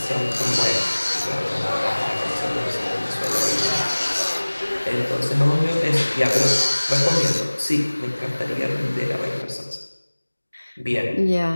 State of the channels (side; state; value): both; inverted; correlation -1.00